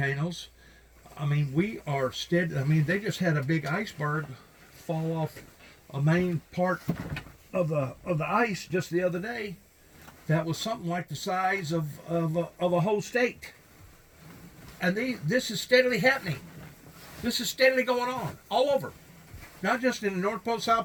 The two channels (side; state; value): both; identical; correlation 1.00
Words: I mean, we are steady. I mean, they just had a big iceberg fall off a main part of the ice just the other day. That was something like the size of a whole state. And this is steadily happening. This is steadily going on all over, not just in the North Pole,